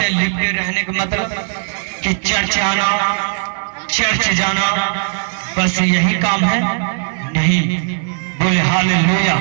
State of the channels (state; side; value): silent; left; digital silence